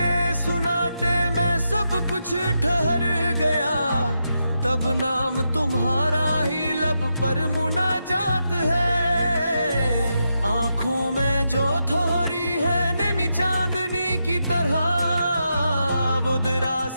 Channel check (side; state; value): both; inverted; correlation -0.85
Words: सुनाटे में सब कुछ ठहर गया, तब नाम तुम्हारा ही लब पर मुनाजात है। आंखों में जो थोड़ी है नेमी चांदनी की तरह, वो